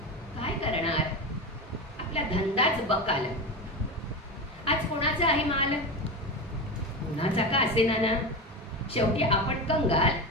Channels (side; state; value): both; normal; correlation 0.21